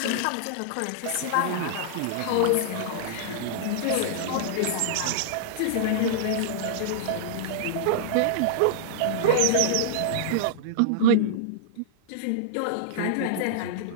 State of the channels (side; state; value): both; different; correlation -0.02